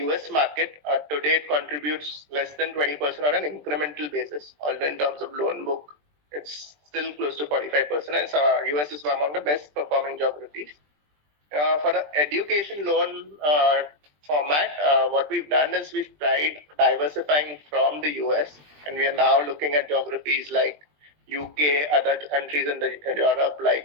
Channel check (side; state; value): left; late; 20 ms